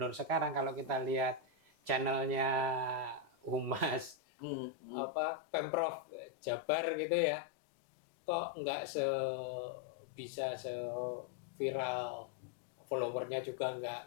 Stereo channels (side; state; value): right; drops out; at 4.2 s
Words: sekarang kalau kita lihat channelnya Humas Pemprov Jabar gitu ya, kok nggak bisa viral, followernya juga nggak